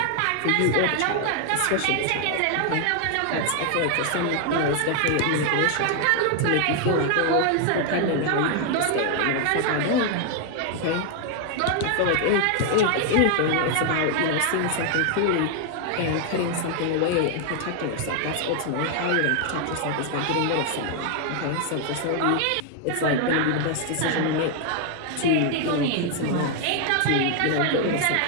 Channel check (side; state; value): both; different; correlation 0.00